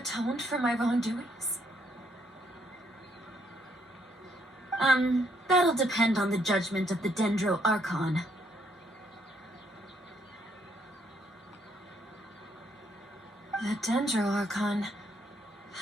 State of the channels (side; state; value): both; normal; correlation 0.71